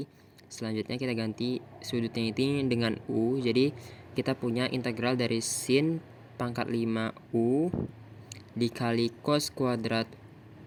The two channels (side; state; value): both; identical; correlation 1.00